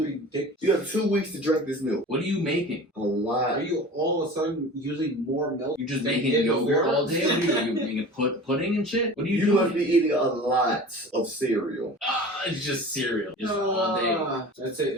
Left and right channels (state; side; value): normal; both; correlation 0.38